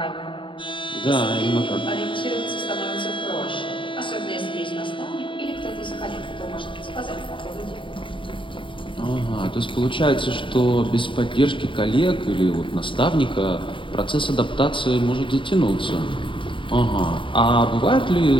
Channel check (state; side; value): late; right; 0.25 ms